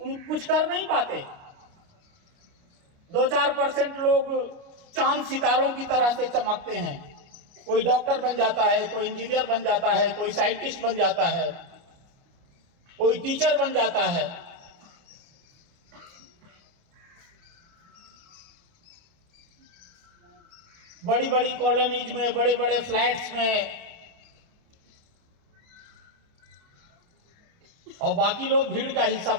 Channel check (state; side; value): late; left; 29 ms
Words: कुछ कर नहीं पाते। 2-4% लोग चांद सितारों की तरह से चमकते हैं। कोई डॉक्टर बन जाता है, कोई इंजीनियर बन जाता है, कोई साइंटिस्ट बन जाता है, कोई टीचर बन जाता है। बड़ी बड़ी कॉलोनीज में, बड़े बड़े फ्लैट्स में, और बाकी लोग भीड़ का हिस्सा